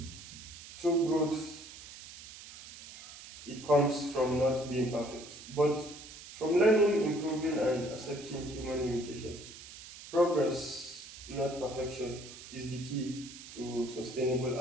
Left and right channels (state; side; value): noise; right; hiss, 15 dB below the sound